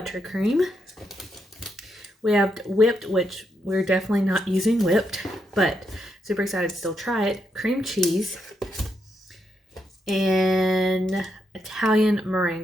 We have whipped, which we're definitely not using whipped, but super excited to still try it. Cream cheese and Italian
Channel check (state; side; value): normal; both; correlation 0.80